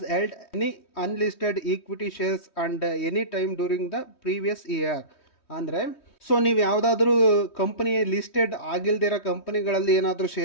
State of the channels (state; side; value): late; right; 3.2 ms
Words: held any unlisted equity shares and any time during the previous year. ಅಂದರೆ ಸೊ ನೀವು ಯಾವುದಾದ್ರೂ ಕಂಪನಿ ಲಿಸ್ಟೆಡ್ ಆಗಿಲ್ದಿರೋ ಕಂಪನಿಗಳಲ್ಲಿ ಏನಾದರೂ